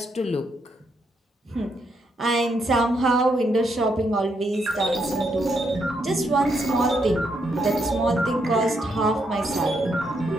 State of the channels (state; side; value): normal; both; correlation 0.78